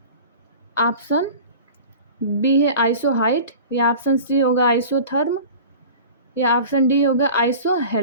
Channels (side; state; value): both; inverted; correlation -0.39